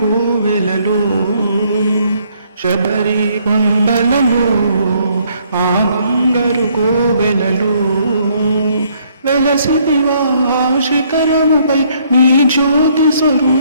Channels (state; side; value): inverted; both; correlation -0.67